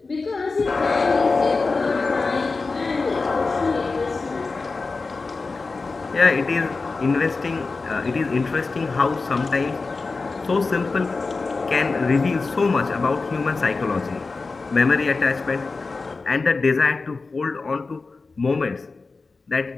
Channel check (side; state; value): right; quieter; 4.0 dB